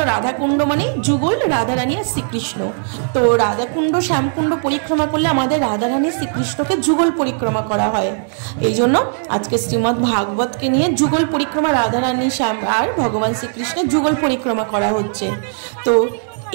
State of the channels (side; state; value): left; silent; 67 dB below the other